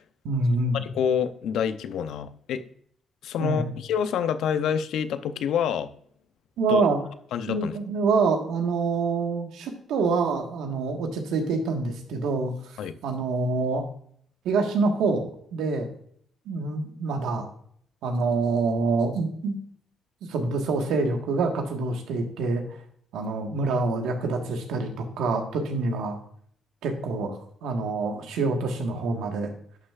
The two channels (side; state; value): both; normal; correlation 0.60